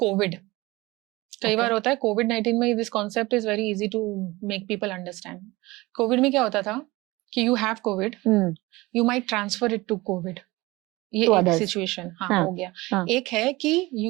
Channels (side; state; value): left; quieter; 21.2 dB